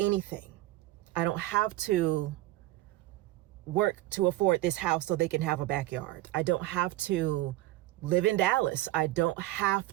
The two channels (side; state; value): left; quieter; 16.9 dB